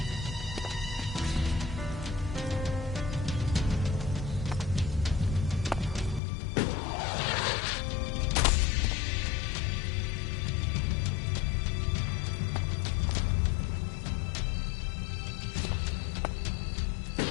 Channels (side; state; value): right; drops out; at 6.2 s